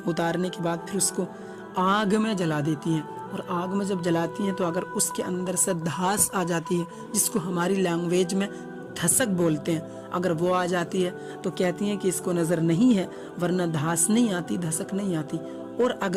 उतारने के बाद फिर उसको आग में जला देती हैं, और आग में जब जलाती हैं तो अगर उसके अंदर से धास आ जाती है, जिसको हमारी लैंग्वेज में धसक बोलते हैं, अगर वो आ जाती है तो कहती हैं कि इसको नज़र नहीं है, वरना धास नहीं आती, धसक नहीं आती। और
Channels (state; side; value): identical; both; correlation 1.00